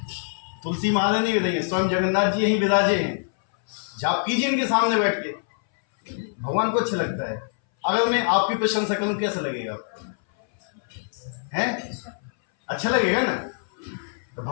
तुलसी महाराज नहीं विराजे, स्वयं जगन्नाथ जी यहीं विराजे हैं। जाप कीजिए इनके सामने बैठ के, भगवान को अच्छा लगता है। अगर मैं आपकी प्रशंसा करूं कैसा लगेगा आपको? हैं? अच्छा लगेगा ना? तो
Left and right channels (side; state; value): right; silent; 60 dB below the other